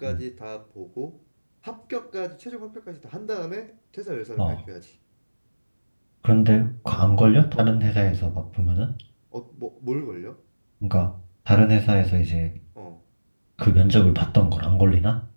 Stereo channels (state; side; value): inverted; both; correlation -1.00